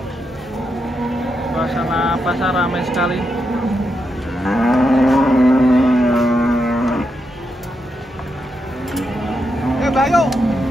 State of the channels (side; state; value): both; normal; correlation 0.84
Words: Suasana pasar ramai sekali. Bayo.